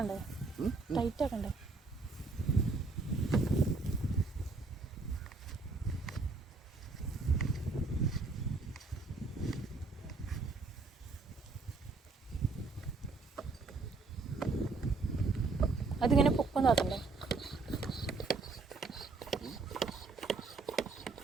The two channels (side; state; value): left; quieter; 3.9 dB